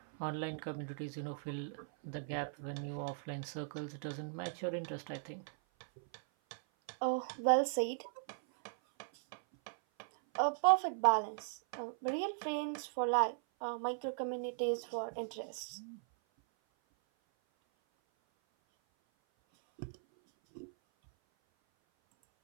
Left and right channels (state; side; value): silent; left; 52 dB below the other